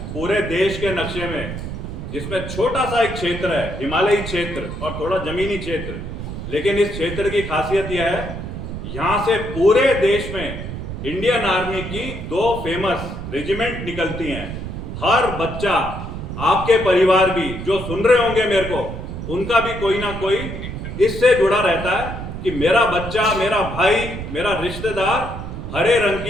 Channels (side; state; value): right; noise; rumble, 7 dB below the sound